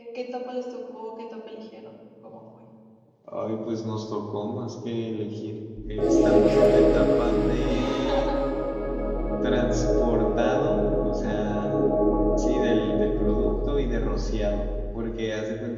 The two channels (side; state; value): both; identical; correlation 1.00